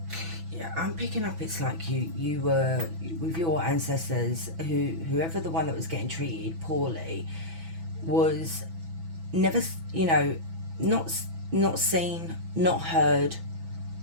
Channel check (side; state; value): left; late; 6.1 ms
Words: I'm picking up it's like you were with your ancestors, whoever the one that was getting treated poorly was never, you know, not seen, not heard,